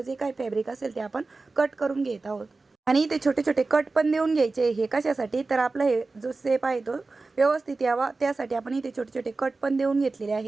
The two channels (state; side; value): quieter; left; 3.7 dB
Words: काही फॅब्रिक असेल ते आपण कट करून घेत आहोत. आणि इथे छोटे छोटे कट पण देऊन घ्यायचे. हे कशासाठी, तर आपला हे जो शेप आहे तो व्यवस्थित यावा त्यासाठी आपण इथे छोटे छोटे कट पण देऊन घेतलेले